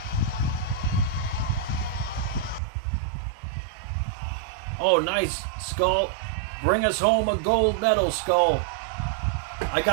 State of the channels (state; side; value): drops out; left; at 2.6 s